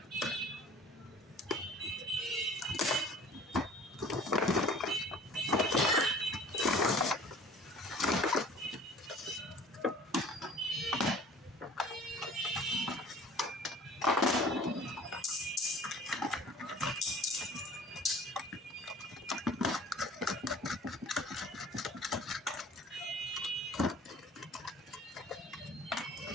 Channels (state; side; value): normal; both; correlation 0.48